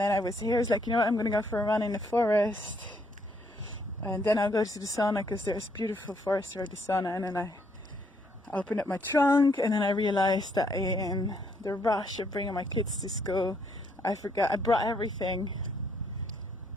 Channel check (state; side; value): normal; both; correlation 0.71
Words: I was like, I'm going to go for a run in the forest. And then I'll go to the sauna because there's beautiful forest where the sauna. And then I opened up my trunk, and then I realized that in the rush of bringing my kids to school, I forgot I brought everything